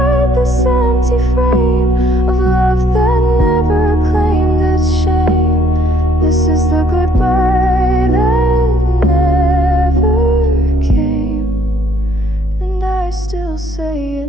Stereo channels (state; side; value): normal; both; correlation 0.65